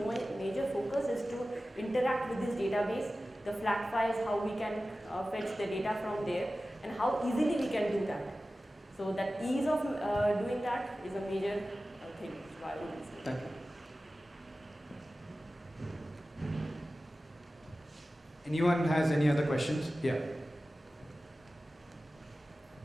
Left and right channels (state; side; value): normal; both; correlation 0.95